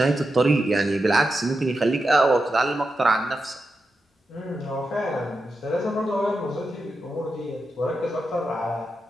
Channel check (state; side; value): normal; both; correlation 0.88